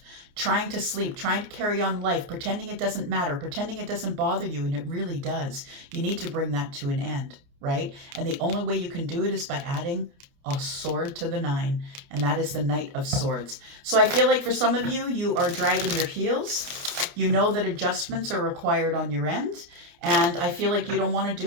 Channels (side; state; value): left; late; 29 ms